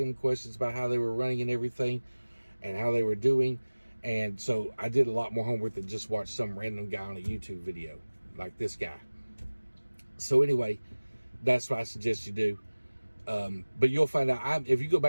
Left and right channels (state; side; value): inverted; both; correlation -1.00